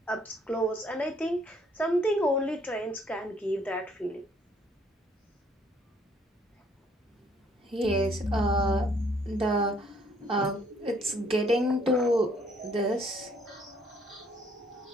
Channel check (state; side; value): normal; both; correlation 0.64